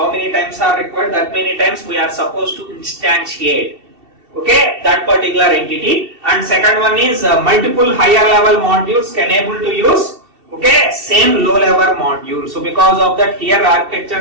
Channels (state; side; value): late; left; 2.7 ms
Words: many times are required? That many times we are supposed to instantiate, okay, that particular entity. And second one is multiple higher level modules can able to use, okay, same low level module. So because of that, here